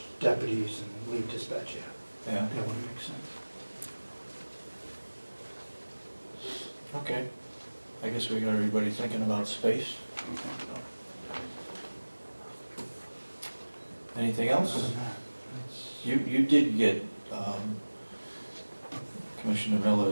deputies and lead dispatch, yeah, Yeah, that wouldn't make sense. okay. I guess we got everybody thinking about space. Anything Other else? than that, it's- You did get Commissioner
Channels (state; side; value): inverted; both; correlation -1.00